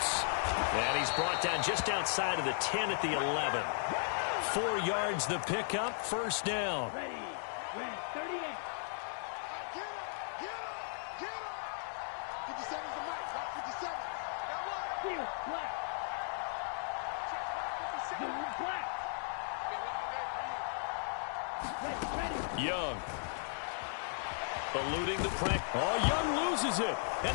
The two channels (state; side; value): silent; right; digital silence